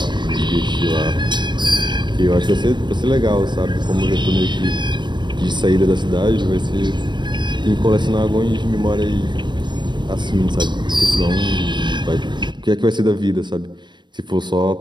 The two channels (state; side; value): late; left; 0.22 ms